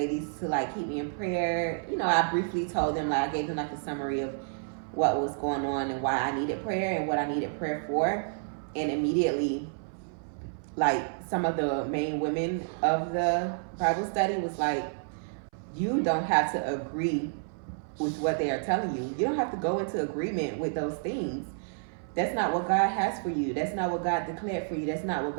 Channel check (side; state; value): left; silent; 58 dB below the other